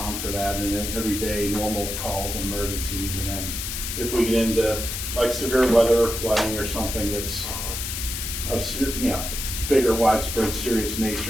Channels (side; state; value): left; noise; hiss, 4 dB below the sound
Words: for that, and then everyday normal calls and emergencies. And then if we get into like severe weather or flooding or something that's of bigger, widespread, serious